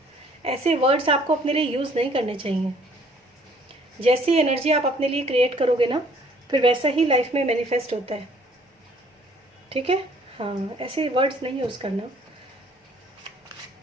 ऐसे वर्ड्स आपको अपने लिए यूज़ नहीं करने चाहिए। जैसी एनर्जी आप अपने लिए क्रिएट करोगे ना, फिर वैसा ही लाइफ में मैनिफेस्ट होता है। ठीक है, हाँ, ऐसे वर्ड्स नहीं यूज़ करना।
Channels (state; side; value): normal; both; correlation 0.59